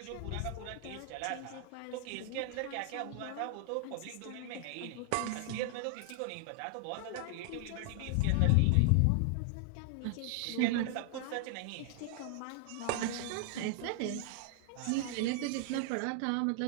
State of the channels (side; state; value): both; different; correlation 0.00